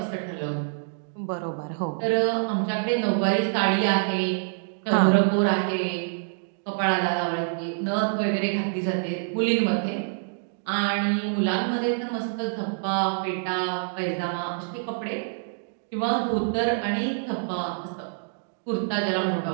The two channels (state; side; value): silent; left; digital silence